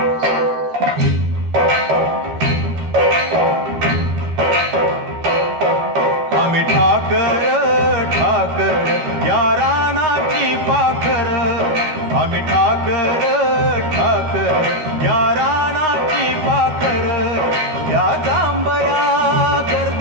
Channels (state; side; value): late; left; 12 ms